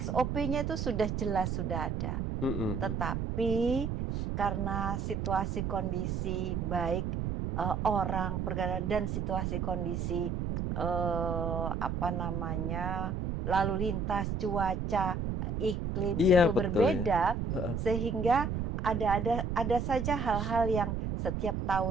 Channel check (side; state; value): right; noise; rumble, 2 dB below the sound